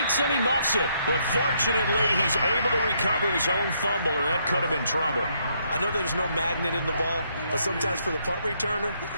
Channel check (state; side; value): inverted; both; correlation -0.73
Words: and he muffs it. But fortunately, he's able to recover his own fumble, or that could have been trouble. I know there's no magnet in the ball, but sometimes for the punt returner,